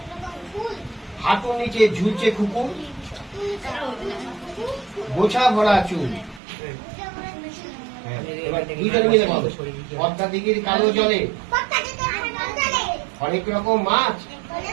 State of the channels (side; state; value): left; drops out; at 6.4 s